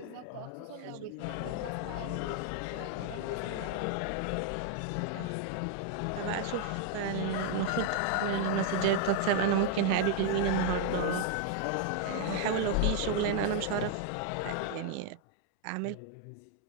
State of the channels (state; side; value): different; both; correlation 0.00